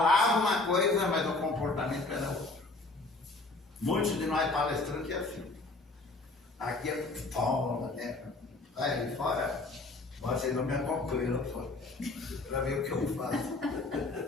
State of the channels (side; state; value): right; quieter; 3.3 dB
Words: uma coisa, mas o comportamento era outro. Muitos de nós palestrantes é assim. Aqui é toma, né? Vai ali fora, vocês não me acompanham lá fora, para ver o que eu faço.